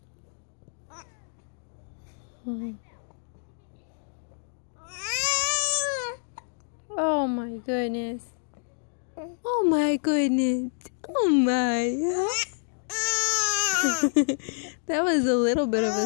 Oh my goodness. Oh my goodness. Oh my. That was a little bit of a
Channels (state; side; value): silent; right; digital silence